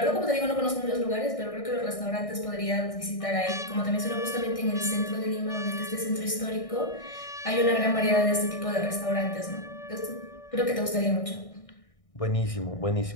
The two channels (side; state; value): right; late; 1.6 ms